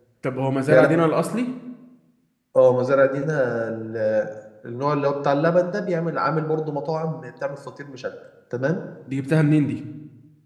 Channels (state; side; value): identical; both; correlation 1.00